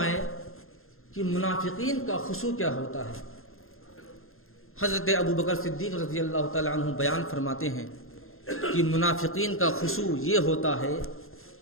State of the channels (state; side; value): late; right; 0.61 ms